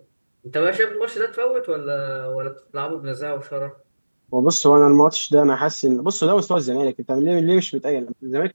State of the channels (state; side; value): inverted; both; correlation -1.00